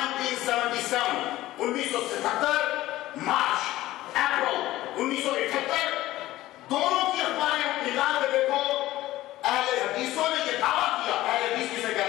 1977, मार्च, अप्रैल 1978, दोनों की अखबारें निकाल के देखो। अहले हदीसों ने यह दावा किया, अहले हदीस किसे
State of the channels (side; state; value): right; quieter; 16.0 dB